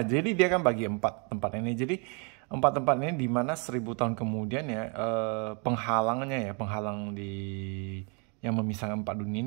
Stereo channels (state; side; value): quieter; left; 35.3 dB